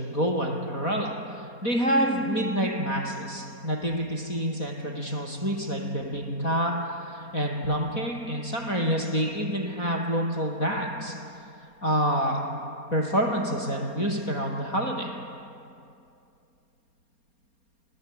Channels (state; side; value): late; right; 4.3 ms